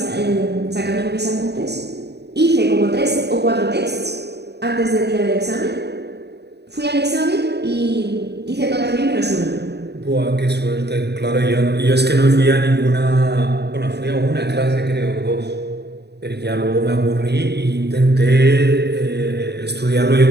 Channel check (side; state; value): left; late; 0.48 ms